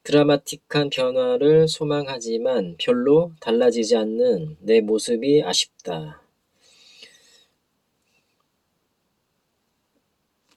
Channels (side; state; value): both; identical; correlation 1.00